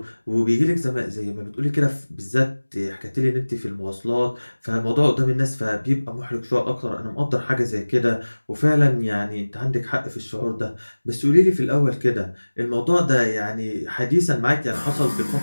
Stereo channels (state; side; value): inverted; both; correlation -1.00